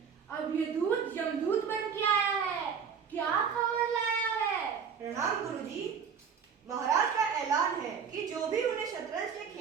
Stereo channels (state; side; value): quieter; left; 6.8 dB